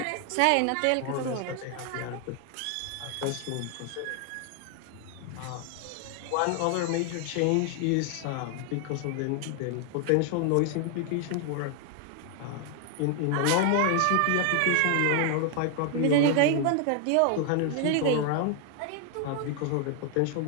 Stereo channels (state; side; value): different; both; correlation 0.00